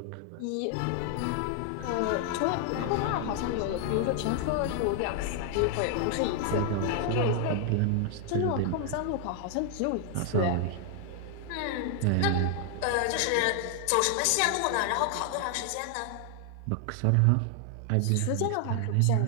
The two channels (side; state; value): both; different; correlation 0.00